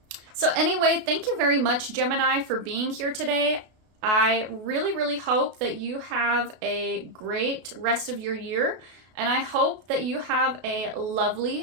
So anyway, thank you very much, Gemini, for being here today. I really, really hope that you have a great rest of your year, and I hope that you have a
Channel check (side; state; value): left; late; 33 ms